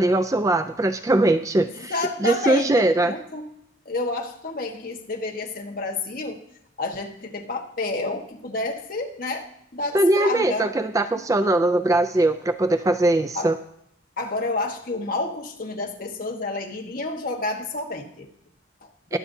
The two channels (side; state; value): both; normal; correlation 0.58